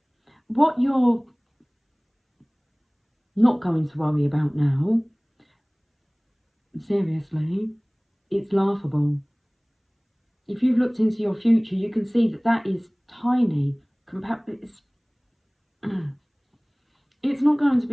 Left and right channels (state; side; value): identical; both; correlation 1.00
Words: what you're not going to worry about now, seriously, it's laughable. If you've looked into your future, you can see that that is tiny. It's not going to